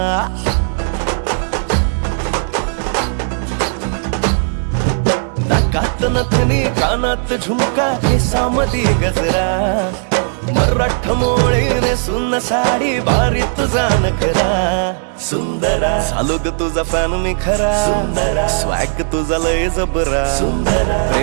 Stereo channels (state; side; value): silent; left; 69 dB below the other